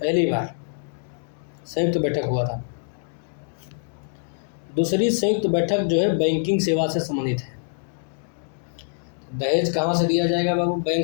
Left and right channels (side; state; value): right; silent; digital silence